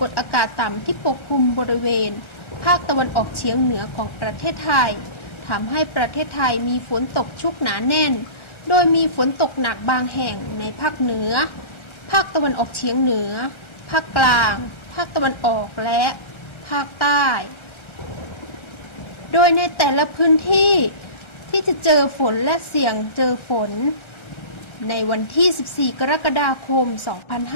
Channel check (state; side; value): late; right; 1.4 ms